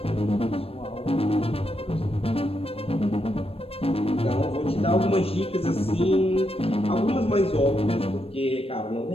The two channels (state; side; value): late; right; 0.28 ms